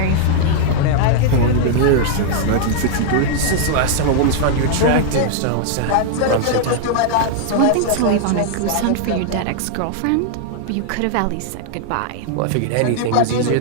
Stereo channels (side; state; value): both; different; correlation -0.01